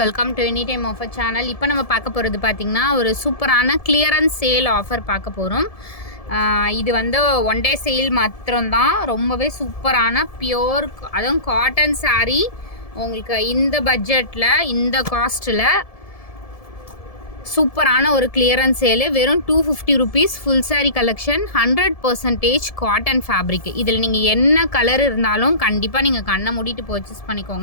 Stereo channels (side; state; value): right; late; 1.7 ms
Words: welcome to any time offer channel. இப்போ நம்ம பார்க்க போகிறது பார்த்திங்கன்னா ஒரு சூப்பரான கிளியரன்ஸ் சேல் ஆஃபர் பார்க்க போகிறோம். இது வந்து ஒன் டே சேல் மாத்திரம்தான். ரொம்பவே சூப்பரான பியோர், அதுவும் காட்டன் சாரீ. உங்களுக்கு இந்த பட்ஜெட்டில், இந்த காஸ்ட்டில் சூப்பரான ஒரு கிளியரன்ஸ் சேலு. வெறும் 250 rupees. Full sari collection, 100% cotton fabric. இதில் நீங்கள் என்ன கலர் இருந்தாலும் கண்டிப்பாக நீங்கள் கண்ணை மூடிட்டு பர்ச்சேஸ்